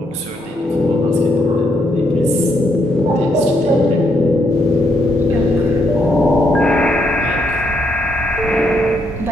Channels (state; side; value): normal; both; correlation 0.75